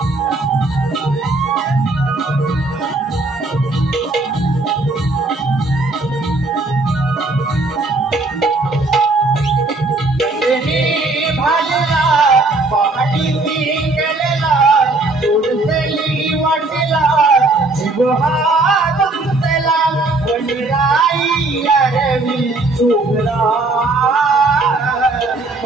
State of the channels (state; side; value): quieter; left; 3.1 dB